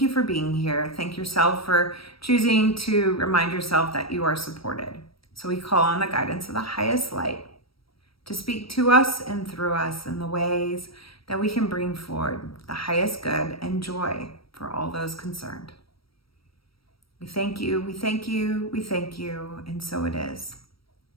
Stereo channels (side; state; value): right; late; 0.75 ms